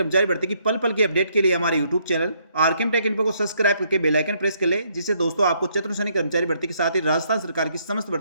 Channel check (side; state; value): both; inverted; correlation -0.70